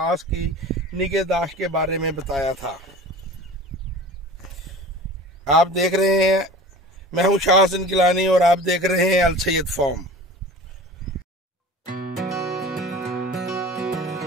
की निगहदाश्त के बारे में बताया था। आप देख रहे हैं, मैं हूं शाह हसन गिलानी और आप देख रहे हैं अल सैयद फार्म।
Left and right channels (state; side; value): normal; both; correlation 0.39